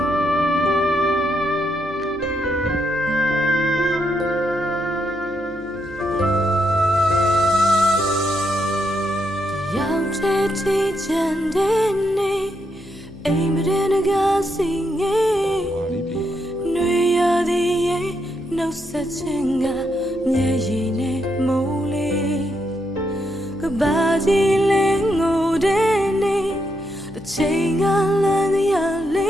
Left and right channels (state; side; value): noise; left; hum, 20 dB below the sound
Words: ရောက်တဲ့ဒီချန်တဲ့နေအိမ်မရကစီငယ်နှွေရသည်ရဲ့နှုတ်ဆက်ခြင်းကမျက်ရည်နဲ့မိုးလေးကဘာကြီးလဲငိုတဲ့နေတစ်ချိန်ကလမ်းရလ